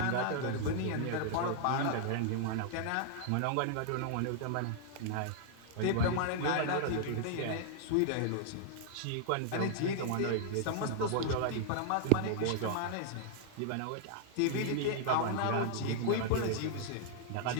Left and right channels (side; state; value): both; different; correlation -0.01